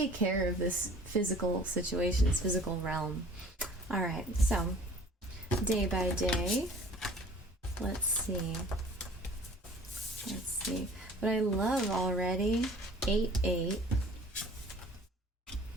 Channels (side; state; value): both; normal; correlation 0.49